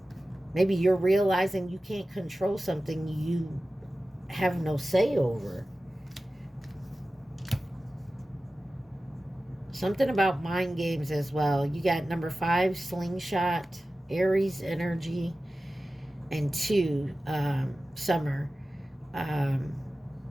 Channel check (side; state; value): both; normal; correlation 0.95